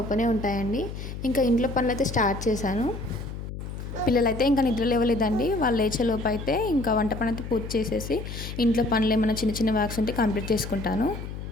ఓపెనే ఉంటాయండి. ఇంకా ఇంట్లో పనులు అయితే స్టార్ట్ చేశాను. పిల్లలైతే ఇంకా నిద్ర లేవలేదండి. వాళ్ళు లేచేలోపు అయితే ఇంకా వంట పని అయితే పూర్తి చేసేసి ఇంట్లో పనులు ఏమైనా చిన్న చిన్న వర్క్స్ ఉంటే కంప్లీట్ చేసుకుంటాను.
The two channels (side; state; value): left; noise; hum, 8 dB below the sound